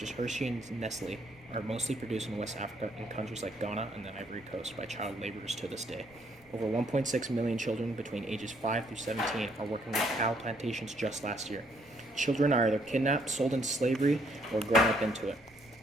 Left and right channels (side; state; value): right; noise; rumble, 27 dB below the sound